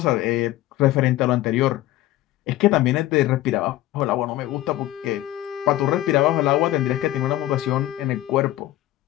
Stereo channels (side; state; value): right; quieter; 15.4 dB